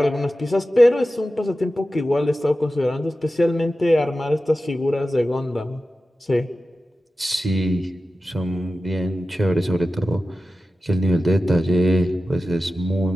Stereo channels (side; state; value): both; normal; correlation 0.94